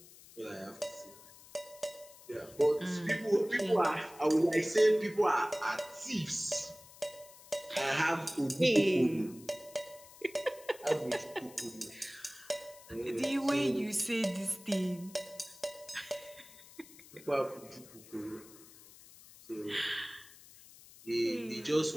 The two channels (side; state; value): left; noise; hiss, 21 dB below the sound